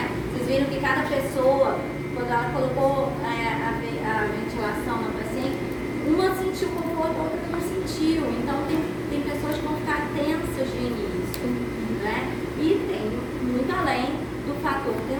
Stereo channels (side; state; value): both; identical; correlation 1.00